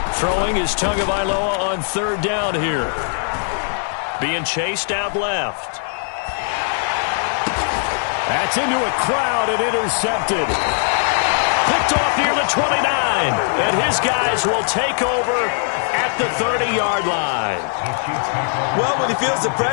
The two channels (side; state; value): right; silent; digital silence